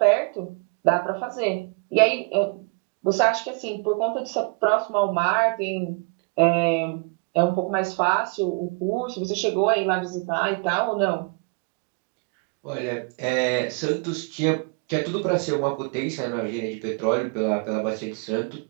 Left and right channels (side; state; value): left; quieter; 34.0 dB